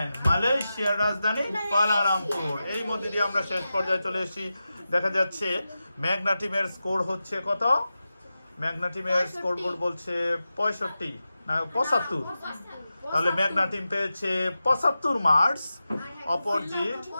মালয়েশিয়ার রাজধানী কুয়ালালামপুর। এই মধ্যে দিয়ে আমরা শেষ পর্যায়ে চলে এসেছি। দেখা যাচ্ছে মেঘনা টিমের স্কোর হচ্ছে কত? মেঘনা টিমের স্কোর বোর্ড বলছে 65 না 75। তাহলে মেঘনা টিম পেয়েছে 75 মার্কস, অপরজিট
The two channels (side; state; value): both; inverted; correlation -0.93